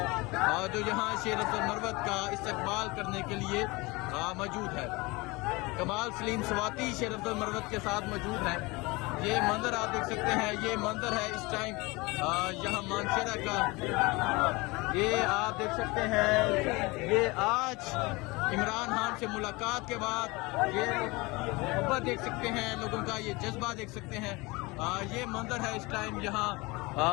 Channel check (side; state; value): right; quieter; 24.1 dB